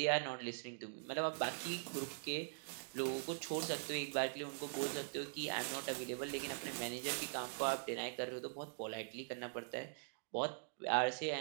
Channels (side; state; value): left; silent; digital silence